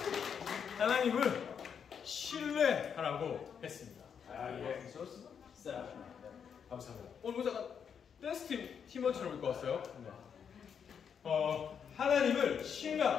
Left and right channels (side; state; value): right; quieter; 7.3 dB